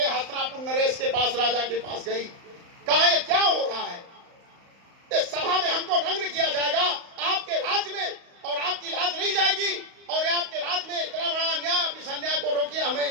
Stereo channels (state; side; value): late; left; 35 ms